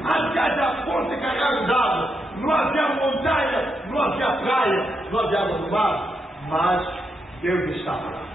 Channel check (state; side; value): normal; both; correlation 0.82